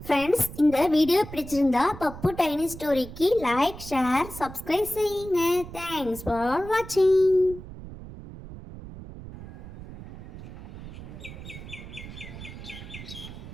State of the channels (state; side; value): noise; right; rumble, 13 dB below the sound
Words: ஃப்ரெண்ட்ஸ், இந்த வீடியோ பிடிச்சிருந்தா பப்பு டைனி ஸ்டோரிக்கு லைக், ஷேர், சப்ஸ்கிரைப் செய்யுங்க. தேங்க்ஸ் ஃபார் வாட்சிங்.